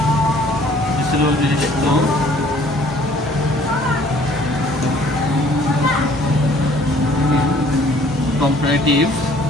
সিলেবল বিশিষ্ট কম্পারেটিভ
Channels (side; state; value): right; noise; rumble, 20 dB below the sound